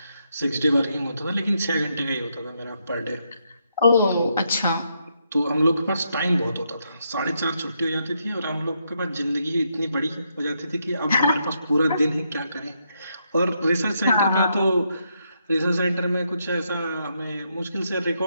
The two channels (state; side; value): inverted; both; correlation -0.78